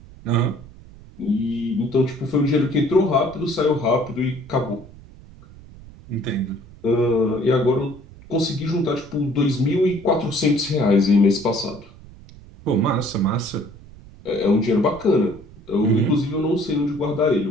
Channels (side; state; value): right; noise; rumble, 20 dB below the sound